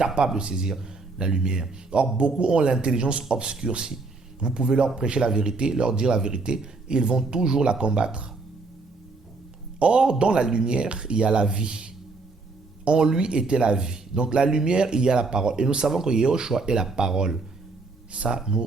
de saisir la lumière. Or, beaucoup ont l'intelligence obscurcie. Vous pouvez leur prêcher la vérité, leur dire la vérité, et ils vont toujours la combattre. Or, dans la lumière, il y a la vie. En lui était la vie. Donc, la lumière, il y a la parole. Et nous savons que Yahushua est la parole. Ça,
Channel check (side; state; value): left; quieter; 3.8 dB